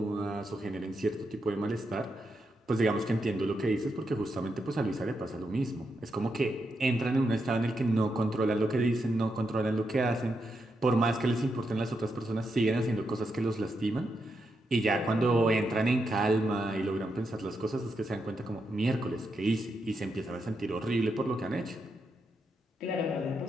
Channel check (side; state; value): both; normal; correlation 0.84